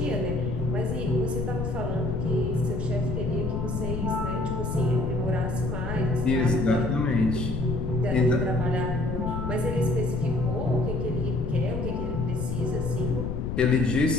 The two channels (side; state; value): left; noise; rumble, 3 dB below the sound